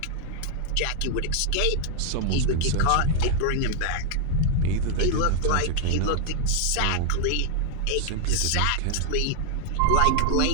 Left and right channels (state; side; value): different; both; correlation 0.00